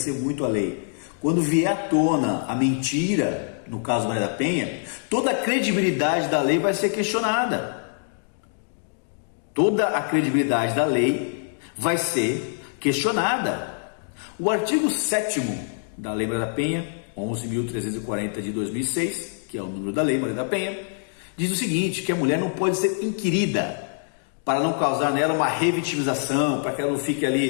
muito a lei. Quando vier à tona a mentira, no caso Maria da Penha, toda a credibilidade da lei vai ser questionada. Toda a credibilidade da lei vai ser questionada. O artigo 7º da Lei Maria da Penha, 11.340 de 2006, que é o número da Lei Maria da Penha, diz o seguinte, que a mulher não pode ser inquirida, para não causar nela uma revitimização, para que ela não fique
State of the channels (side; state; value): right; silent; digital silence